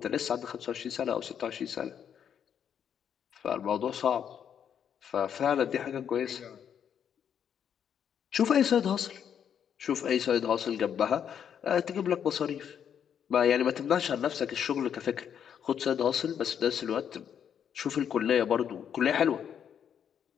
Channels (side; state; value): right; quieter; 8.5 dB